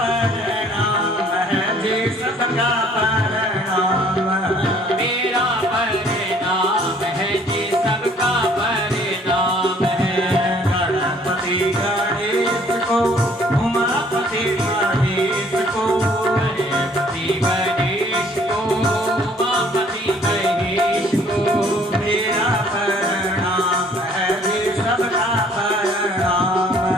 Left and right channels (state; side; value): normal; both; correlation 0.59